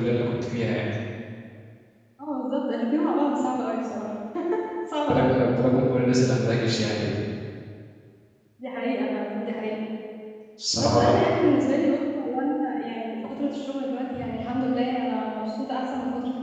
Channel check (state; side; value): identical; both; correlation 1.00